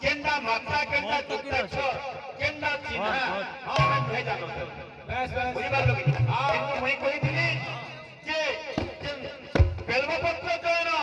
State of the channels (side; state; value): both; identical; correlation 1.00